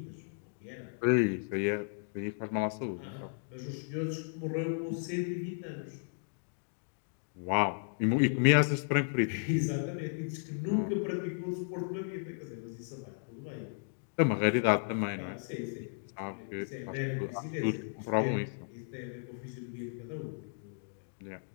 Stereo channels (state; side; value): silent; right; digital silence